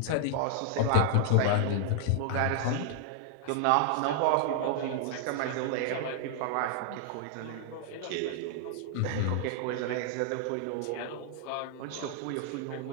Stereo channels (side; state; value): both; different; correlation -0.01